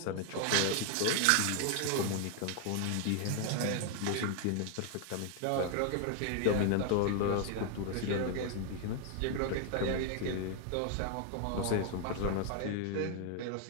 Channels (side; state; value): both; different; correlation 0.00